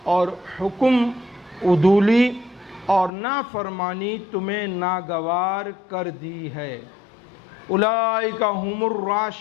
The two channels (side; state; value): right; drops out; at 3.1 s